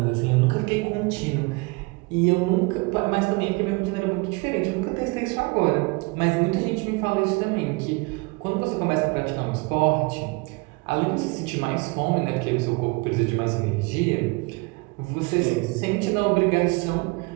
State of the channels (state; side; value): quieter; left; 27.1 dB